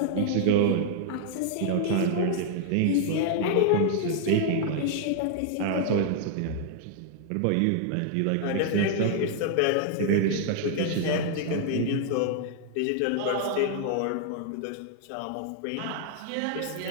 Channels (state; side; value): different; both; correlation 0.00